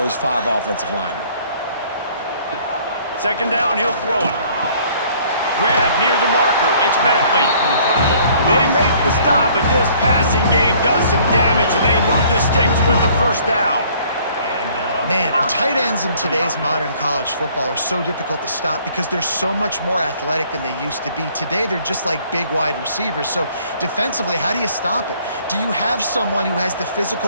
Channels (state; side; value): inverted; both; correlation -0.58